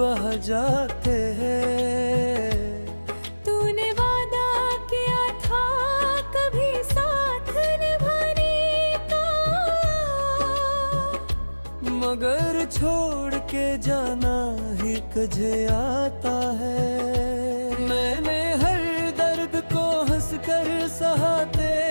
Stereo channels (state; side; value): inverted; both; correlation -1.00